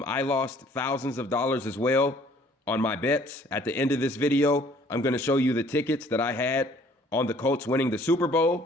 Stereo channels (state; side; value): normal; both; correlation 0.57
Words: lost thousands of dollars as well on my bets. At the end of this video, I'm going to show you the tickets that I had on the Colts winning the Super